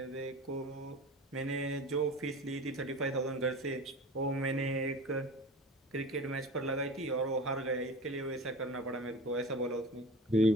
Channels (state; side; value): normal; both; correlation 0.35